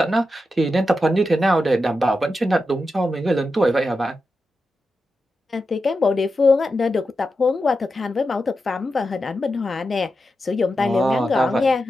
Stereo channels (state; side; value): normal; both; correlation 0.89